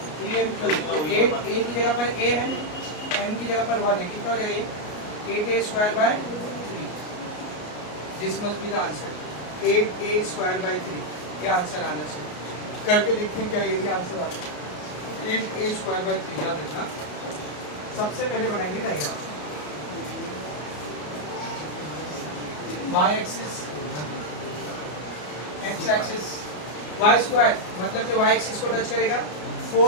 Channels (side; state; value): right; late; 33 ms